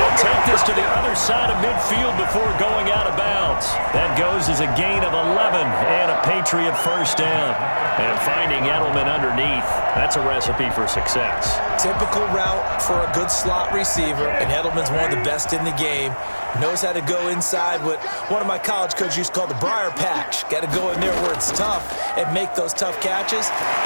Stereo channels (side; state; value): both; inverted; correlation -1.00